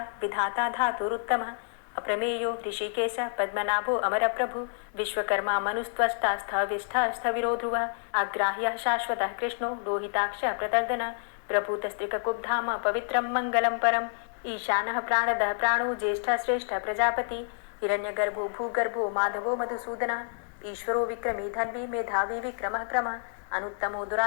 विधाता धातुरुत्तमः अप्रमेयो ऋषिकेश पद्मनाभो अमरप्रभु विश्वकर्मा मनुस्त्वष्टा स्थविष्ठः स्थविरो ध्रुवः अग्राह्यः शाश्वतः कृष्णो लोहिताक्षः प्रतर्दनः प्रभूतस्त्रिककुब्धाम पवित्रं मङ्गलं परम् ईशानः प्राणदः प्राणो ज्येष्ठः श्रेष्ठः प्रजापति हिरण्यगर्भो भूगर्भो माधवो मधुसूदनः ईश्वरो विक्रमी धन्वी मेधावी विक्रमः क्रमः अनुत्तमो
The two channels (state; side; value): silent; right; digital silence